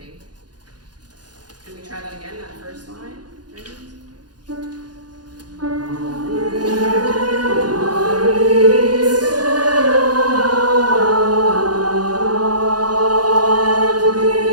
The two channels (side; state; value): left; late; 0.69 ms